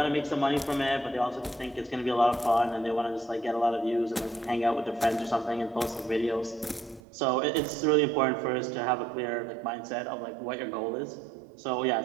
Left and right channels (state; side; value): drops out; left; at 7.0 s